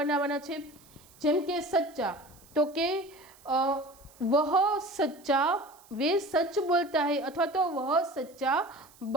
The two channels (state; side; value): noise; right; hiss, 26 dB below the sound